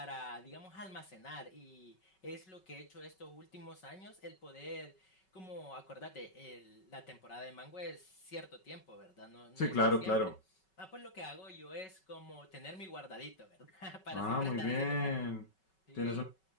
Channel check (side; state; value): right; late; 5.3 ms